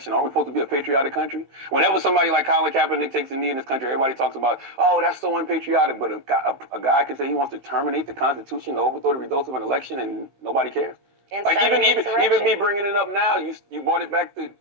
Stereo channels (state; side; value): late; left; 16 ms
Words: Are we supposed to be a patriotic country? Whenever somebody like Colin Kaepernick takes a knee in this country, everybody talks about, oh, that's so unpatriotic. But a guy can say he wants to terminate the Constitution to overthrow the results of an election and nobody cares. Like even me bringing it up now, you brought it back to